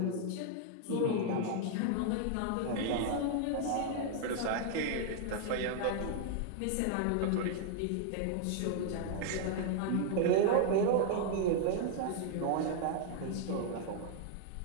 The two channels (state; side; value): different; both; correlation 0.00